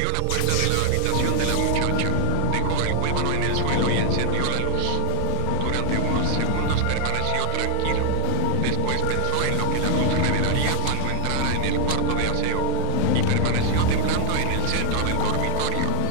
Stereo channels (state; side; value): different; both; correlation 0.01